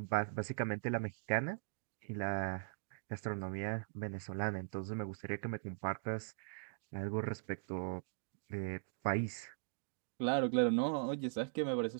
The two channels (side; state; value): left; silent; digital silence